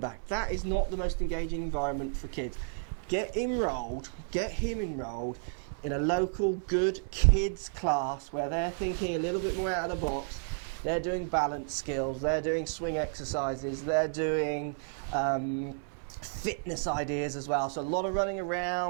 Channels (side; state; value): left; silent; 56 dB below the other